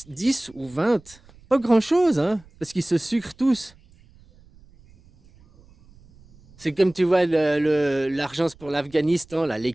ou 20. Pas grand-chose, hein, parce qu'ils se sucrent tous. C'est comme tu vois l'argent pour l'Afghanistan, là, les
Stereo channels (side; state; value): right; noise; rumble, 27 dB below the sound